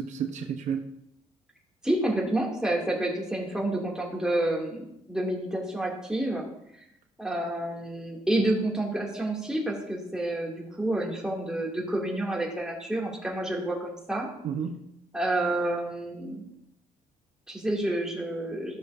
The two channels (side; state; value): both; normal; correlation 0.80